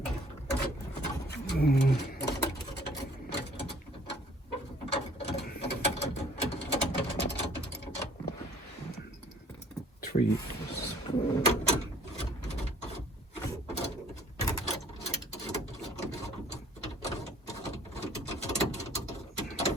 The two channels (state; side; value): normal; both; correlation 0.56